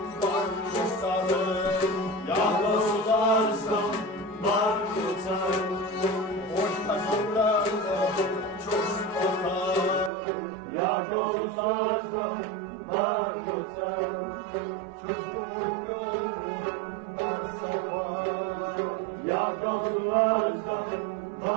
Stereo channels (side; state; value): left; drops out; at 10.1 s